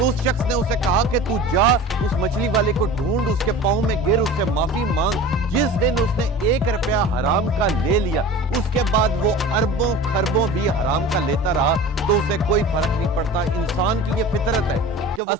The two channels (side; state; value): both; normal; correlation 0.37